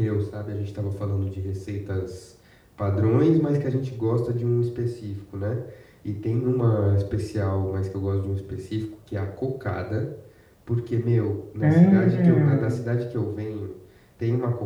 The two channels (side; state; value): both; identical; correlation 1.00